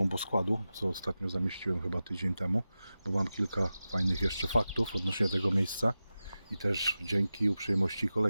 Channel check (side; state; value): both; inverted; correlation -0.94